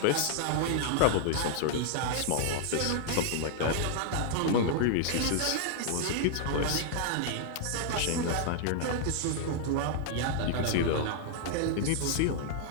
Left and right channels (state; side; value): different; both; correlation -0.01